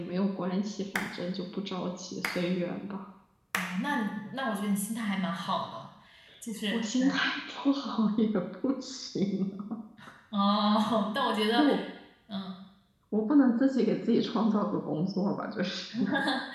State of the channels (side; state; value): both; identical; correlation 1.00